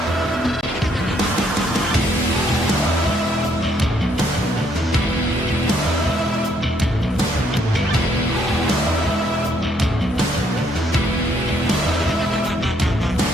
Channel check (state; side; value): normal; both; correlation 0.70